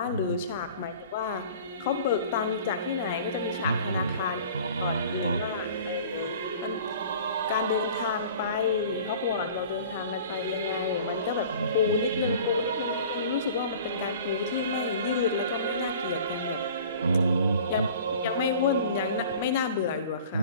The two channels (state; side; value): inverted; both; correlation -0.45